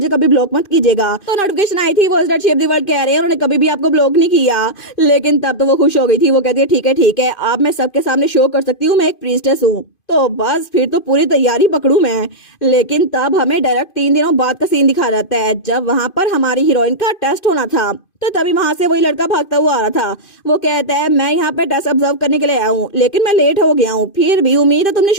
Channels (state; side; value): late; right; 2.5 ms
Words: कभी ब्लॉक मत कीजिएगा। तो नोटिफिकेशन आई थी voice that shape the world कह रहे हैं उन्होंने कभी भी आपको ब्लॉक नहीं किया। लेकिन तब तो वो खुश हो गई थी। वो कहती है ठीक है अब मैं सबके सामने शो कर सकती हूँ मैं एक प्रीस्टेस हूँ। तो बस फिर तो पूरी तैयारी पकड़ू मैं। लेकिन तब हमें डायरेक्ट 3 दिनों बाद का सीन दिखा जाता है जब वहां पर हमारी हीरोइन का टेस्ट होना था। तो तभी वहां से वही लड़का भागता हुआ आ रहा था। वो कहता है मैं यहाँ पे टेस्ट ऑब्जर्व करने के लिए आया हूँ लेकिन मैं लेट हो गया हूँ, फिर भी उम्मीद है तुमने